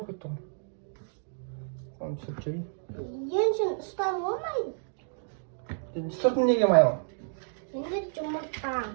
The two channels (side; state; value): left; silent; digital silence